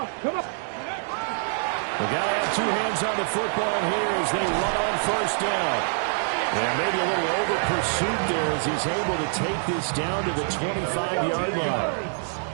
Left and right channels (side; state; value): left; silent; digital silence